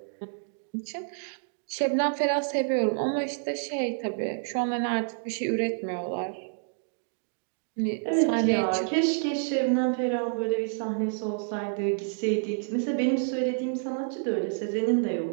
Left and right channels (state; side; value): silent; left; digital silence